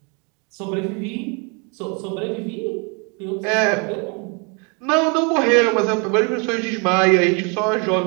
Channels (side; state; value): left; quieter; 33.6 dB